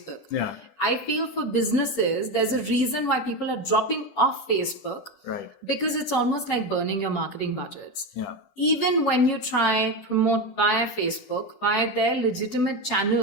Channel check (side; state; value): right; late; 10 ms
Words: Yeah. I feel for businesses, there's a reason why people are dropping off Facebook. Right. Because it's almost like burning your marketing budgets. Yeah. Even when you try promote via Facebook, via their legitimate